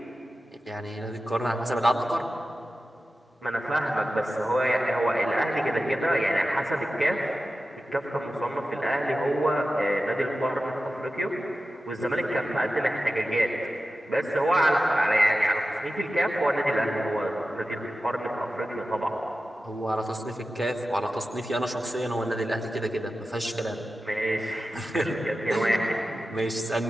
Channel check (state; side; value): normal; both; correlation 0.93